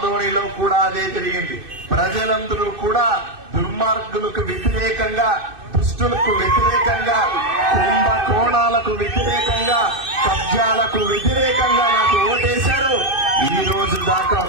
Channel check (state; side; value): late; left; 2.6 ms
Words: కూడా అదే జరిగింది. ప్రజలందరూ కూడా దుర్మార్గులకు వ్యతిరేకంగా, దుష్టులకు వ్యతిరేకంగా, కుంభకోణాలకు వ్యతిరేకంగా, కబ్జాలకు వ్యతిరేకంగా నాకు ఓటేశారు. ఈ రోజు దాకా